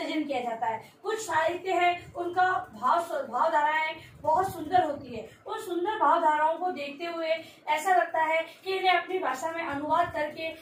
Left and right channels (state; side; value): identical; both; correlation 1.00